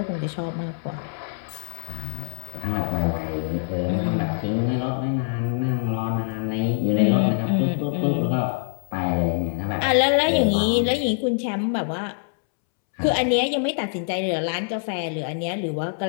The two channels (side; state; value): right; silent; 62 dB below the other